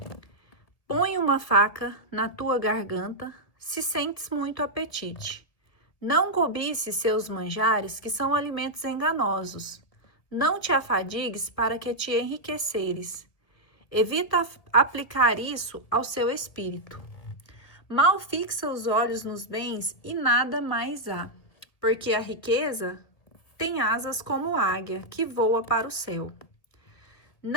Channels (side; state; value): right; late; 1.8 ms